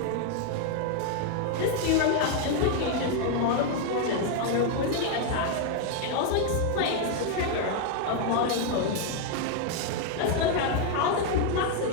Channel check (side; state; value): both; different; correlation 0.00